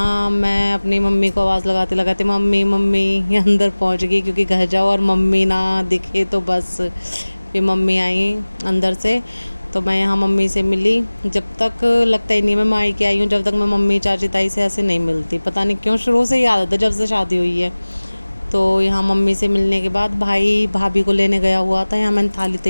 मैं अपनी मम्मी को आवाज़ लगाते लगाते मम्मी मम्मी ये अंदर पहुँच गई, क्योंकि घर जाओ और मम्मी ना दिखे तो बस। फिर मम्मी आई अंदर से, तो मैं यहाँ मम्मी से मिली। जब तक लगता ही नहीं मैं मायके आई हूँ, जब तक मैं मम्मी चाची ताई से ऐसे नहीं मिलती। पता नहीं क्यों, शुरू से ही आदत है जब से शादी हुई है। तो यहाँ मम्मी से मिलने के बाद भाई भाभी को लेने गया हुआ था, यहाँ मैंने थाली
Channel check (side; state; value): both; inverted; correlation -1.00